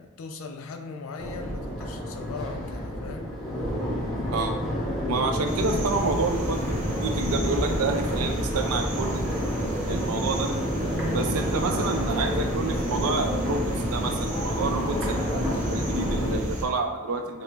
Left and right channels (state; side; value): normal; both; correlation 0.39